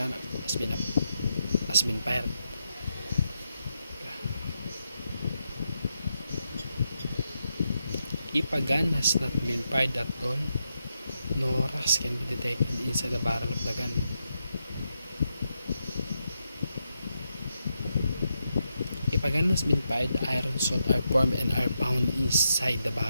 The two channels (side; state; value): both; inverted; correlation -0.84